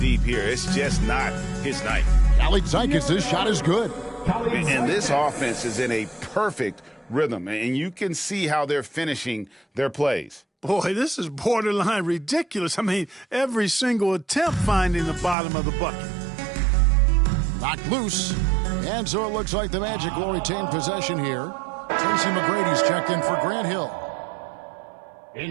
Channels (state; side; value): drops out; left; at 15.4 s